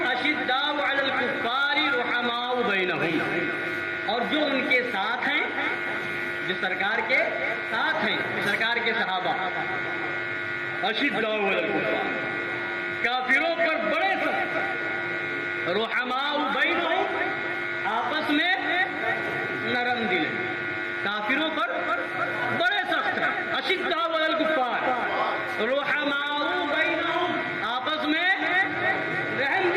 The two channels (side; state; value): both; identical; correlation 1.00